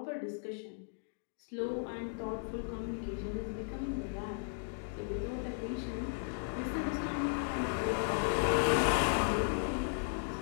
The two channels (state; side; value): silent; right; digital silence